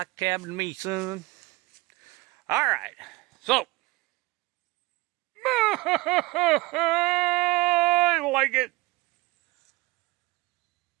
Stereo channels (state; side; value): quieter; left; 21.9 dB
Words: a cabin to me, son. All right. So. I like it.